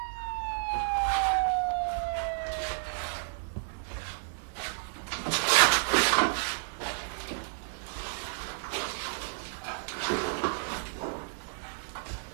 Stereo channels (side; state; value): left; silent; 57 dB below the other